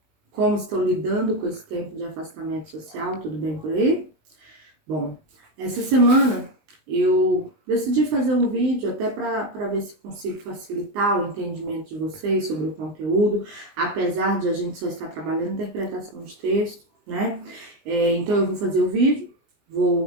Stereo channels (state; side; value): late; left; 19 ms